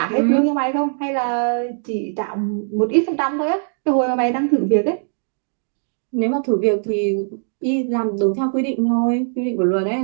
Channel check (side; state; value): left; silent; digital silence